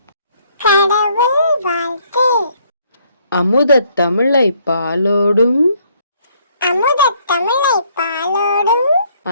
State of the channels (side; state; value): both; inverted; correlation -0.67